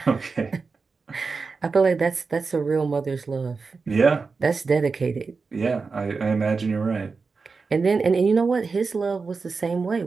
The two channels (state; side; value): quieter; left; 4.6 dB